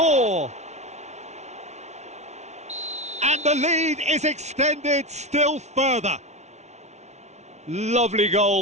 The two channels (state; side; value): late; left; 0.32 ms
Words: And the lead is extended still further. Lovely